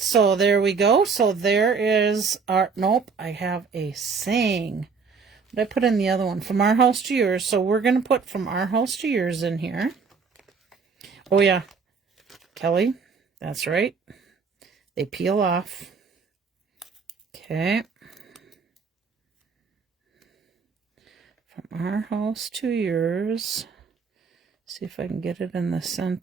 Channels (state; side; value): quieter; left; 5.2 dB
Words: So there we go. So there is our, nope, I have a saying. But I put in the other one, from our house to yours. So we're going to put from our house to yours in here. Oh yeah, Kelly, that's right. They peel off. Okay. From our house to yours. See if I can get it in the